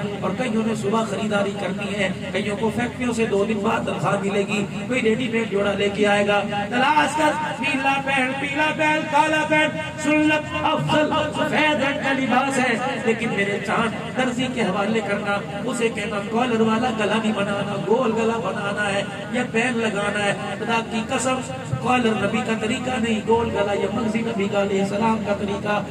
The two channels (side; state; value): both; identical; correlation 1.00